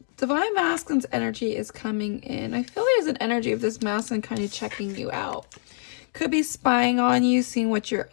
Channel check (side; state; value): right; silent; digital silence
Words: Divine Masculine's energy is coming in. I feel there's an energy of this masculine kind of checking you out. Could be spying on you, seeing what you're